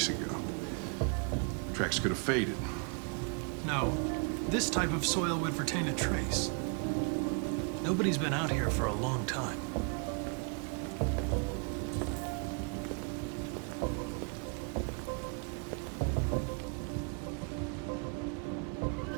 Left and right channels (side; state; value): left; quieter; 36.7 dB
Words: ago. Tracks could have faded. No, this type of soil would retain a trace. Nobody's been out here for a long time.